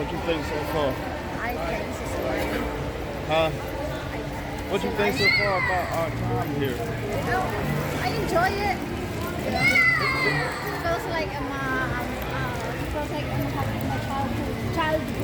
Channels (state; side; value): identical; both; correlation 1.00